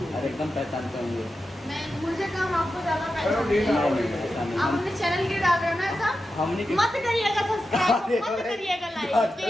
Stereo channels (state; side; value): normal; both; correlation 0.90